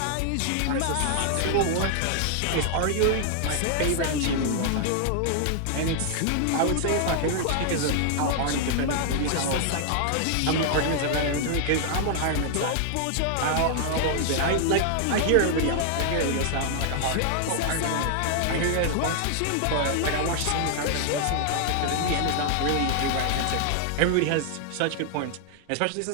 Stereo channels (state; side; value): different; both; correlation 0.00